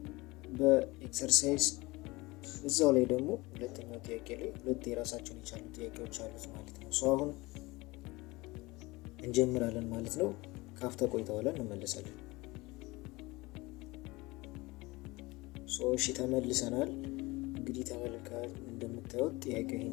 በኤክሰርሳይዝ እዛው ላይ ደግሞ ሁለተኛው ጥያቄ ላይ ሁለት የራሳቸውን የቻሉ ጥያቄዎች አሉት ማለት ነው። አሁን እንጀምራለን ማለት ነው። ካፍታ ቆይታ በኋላ እንመለሳለን። እሺ ተመልሰናል። እንግዲህ ተመልካቾች እንደምታዩት ጥያቄው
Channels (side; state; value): right; quieter; 22.4 dB